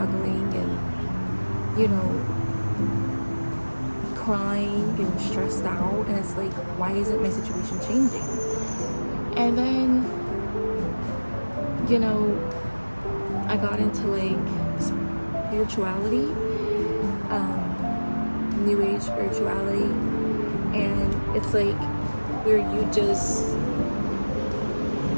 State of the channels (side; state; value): both; inverted; correlation -1.00